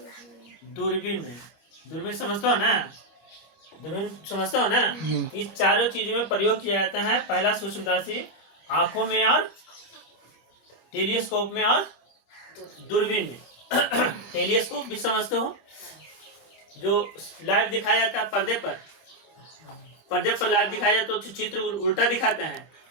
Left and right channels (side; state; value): right; late; 25 ms